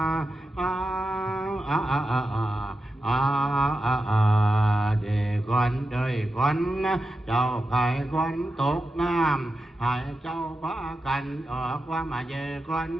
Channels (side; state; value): both; normal; correlation 0.90